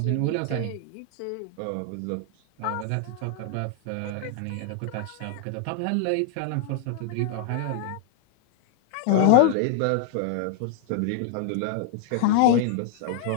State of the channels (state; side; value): different; both; correlation 0.00